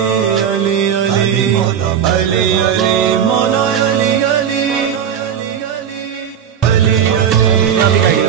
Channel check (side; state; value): left; quieter; 8.5 dB